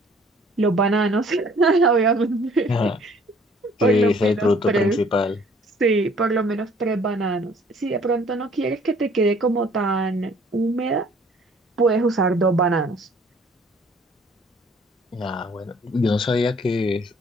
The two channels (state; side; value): normal; both; correlation 0.57